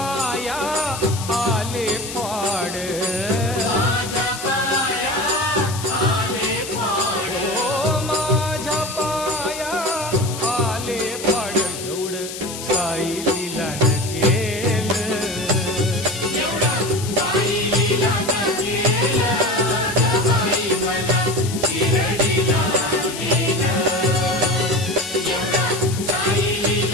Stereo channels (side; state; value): left; noise; hiss, 9 dB below the sound